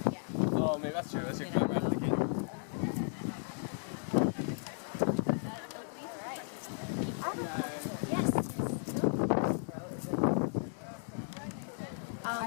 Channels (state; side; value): silent; right; digital silence